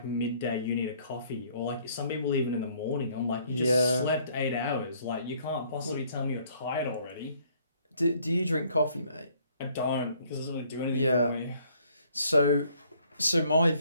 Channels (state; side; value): inverted; both; correlation -0.63